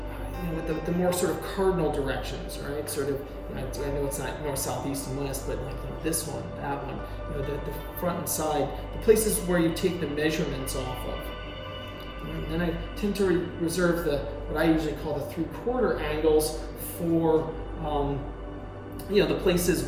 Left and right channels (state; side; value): identical; both; correlation 1.00